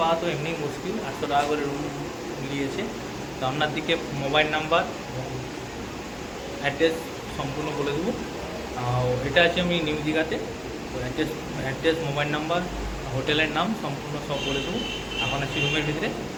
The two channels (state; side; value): identical; both; correlation 1.00